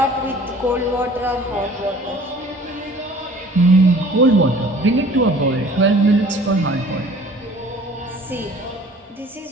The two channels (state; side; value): normal; both; correlation 0.49